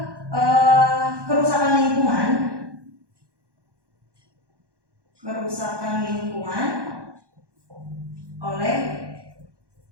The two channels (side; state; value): left; late; 1.1 ms